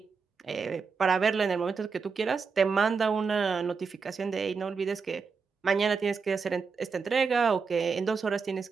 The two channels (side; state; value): left; quieter; 5.2 dB